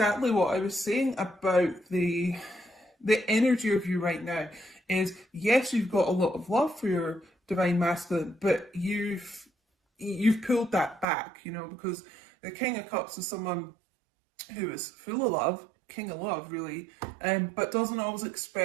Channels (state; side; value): drops out; left; at 11.1 s